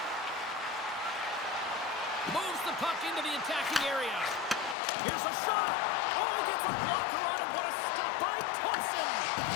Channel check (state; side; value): drops out; right; at 4.8 s